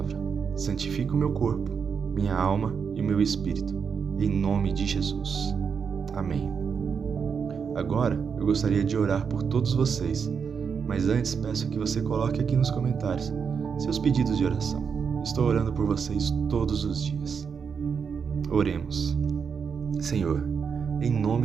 Santifica o meu corpo, minha alma e o meu espírito, em nome de Jesus. Amém. Agora, eu gostaria de orar por todos vocês, mas antes peço que você coloque aqui nos comentários seus pedidos de oração. Estou orando por vocês todos os dias. Oremos. Senhor, em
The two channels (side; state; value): left; quieter; 6.3 dB